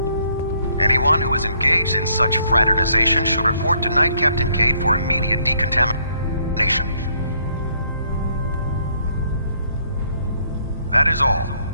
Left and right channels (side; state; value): both; inverted; correlation -0.68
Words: Anyone who is engaged in such fraternization should report to Knight Captain Cade for immediate decontamination. That is all.